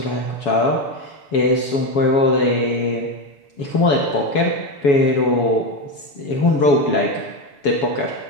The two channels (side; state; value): right; late; 7.1 ms